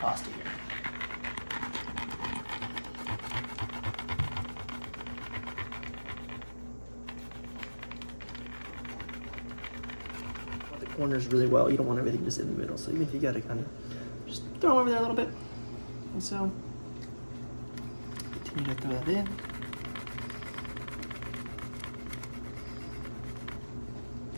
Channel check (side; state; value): both; inverted; correlation -1.00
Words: here. The corners really well. You don't want everything just in the middle. So even if you got to kind of just throw them over there a little bit. And so continue to throw that in.